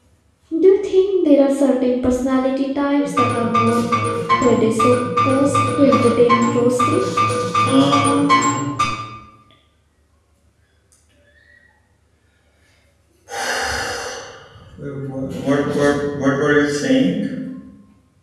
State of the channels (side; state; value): both; identical; correlation 1.00